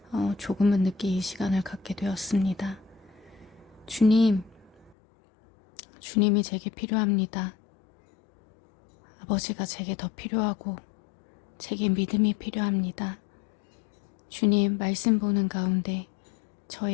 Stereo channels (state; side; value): drops out; right; at 5.0 s